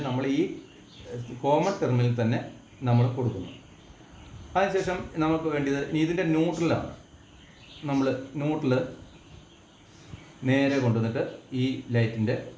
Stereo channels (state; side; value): identical; both; correlation 1.00